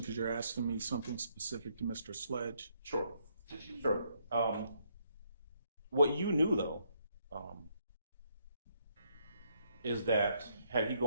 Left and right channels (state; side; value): inverted; both; correlation -0.72